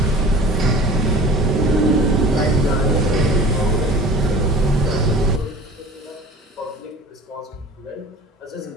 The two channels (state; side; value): normal; both; correlation 0.42